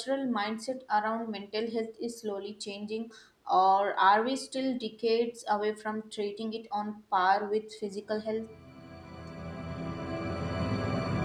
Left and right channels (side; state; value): both; identical; correlation 1.00